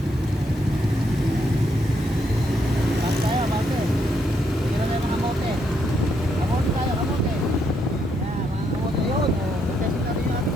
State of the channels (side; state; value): both; normal; correlation 0.76